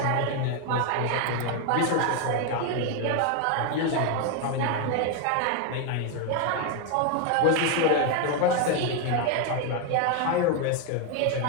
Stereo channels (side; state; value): both; different; correlation 0.01